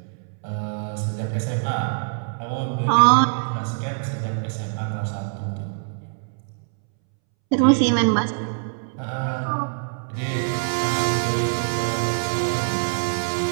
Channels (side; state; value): left; silent; 63 dB below the other